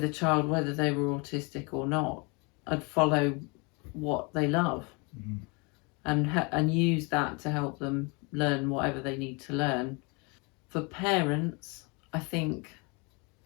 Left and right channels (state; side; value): quieter; right; 30.1 dB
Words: a child whether they were autistic or not. I'd follow what they love and use that to help them learn whatever they need to learn. For parents, I think